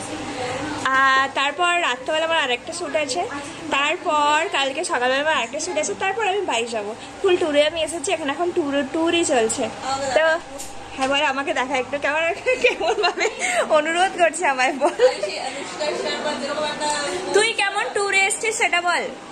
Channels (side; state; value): both; identical; correlation 1.00